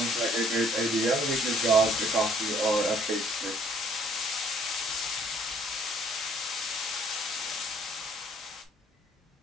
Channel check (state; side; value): normal; both; correlation 0.61